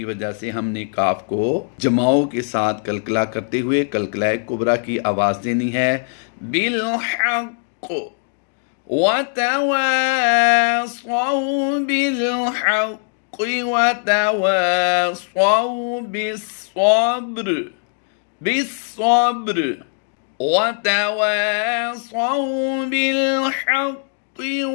وجہ سے ہم نے کاف کو جماؤں کے ساتھ کلکلا کرتے ہوئے کلکلہ کبریٰ کی آواز دینی ہے۔ بالحق وتواصوا بالحق وتواصوا بالصبر بالصبر وتواصوا بالحق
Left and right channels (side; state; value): right; silent; 56 dB below the other